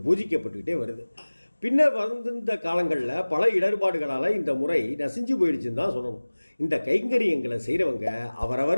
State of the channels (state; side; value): inverted; both; correlation -1.00